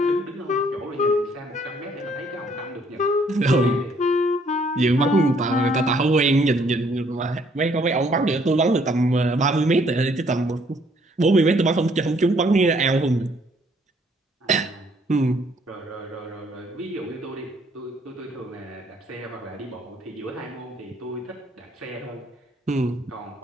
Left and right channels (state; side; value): normal; both; correlation 0.65